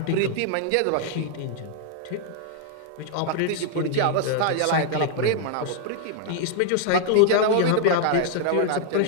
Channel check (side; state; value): both; different; correlation 0.00